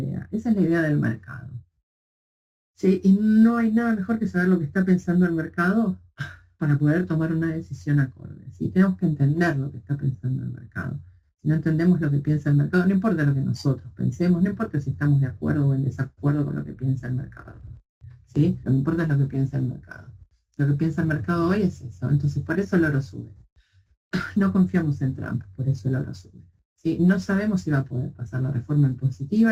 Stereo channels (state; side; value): identical; both; correlation 1.00